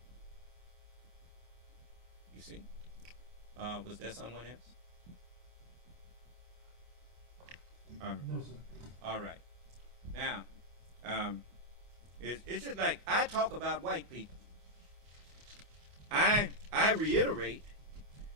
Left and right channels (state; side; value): late; left; 24 ms